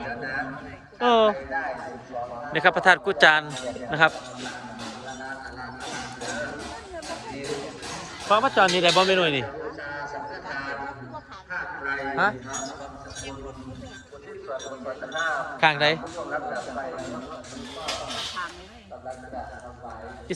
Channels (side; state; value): both; identical; correlation 1.00